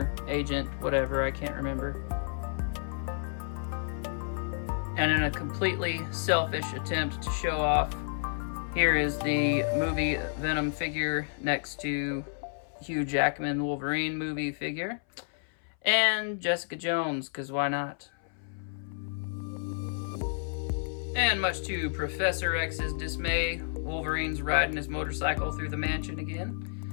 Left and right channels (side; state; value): right; silent; 57 dB below the other